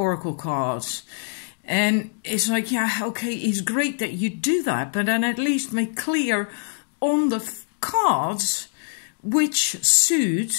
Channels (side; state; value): right; silent; 63 dB below the other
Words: cards. And it's like, yeah, okay, it's great that you do that, but then at least make clear on the cards which